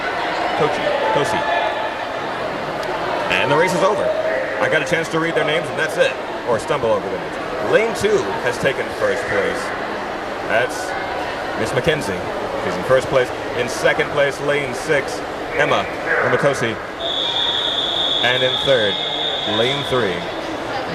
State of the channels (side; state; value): both; identical; correlation 1.00